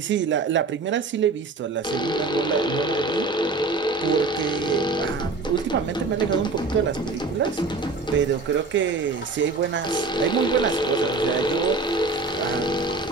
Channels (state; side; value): quieter; left; 3.7 dB